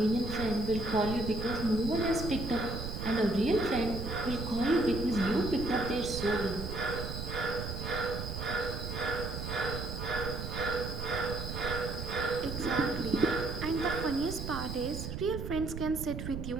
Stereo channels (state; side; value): noise; right; rumble, 5 dB below the sound